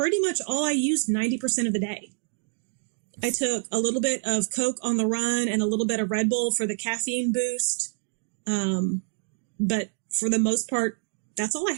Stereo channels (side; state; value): left; silent; 59 dB below the other